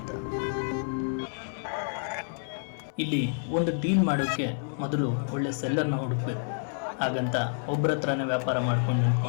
ಇಲ್ಲಿ ಒಂದು ಡೀಲ್ ಮಾಡೋಕ್ಕೆ ಮೊದಲು ಒಳ್ಳೆ ಸೆಲ್ಲರ್ನ ಹುಡುಕಬೇಕು. ಹಾಗಂತ ಒಬ್ಬರ ಹತ್ರನೇ ವ್ಯಾಪಾರ ಮಾಡ್ಕೊಂಡು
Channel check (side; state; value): right; silent; 59 dB below the other